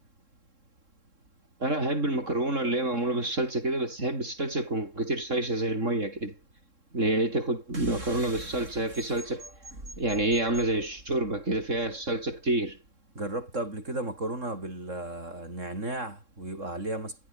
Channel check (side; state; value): left; late; 3.7 ms